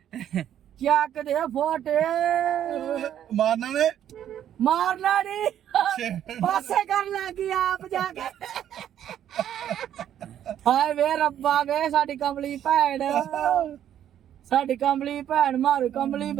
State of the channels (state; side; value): quieter; left; 10.5 dB